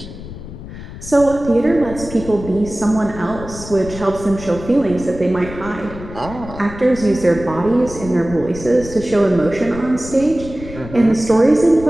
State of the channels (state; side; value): noise; left; rumble, 13 dB below the sound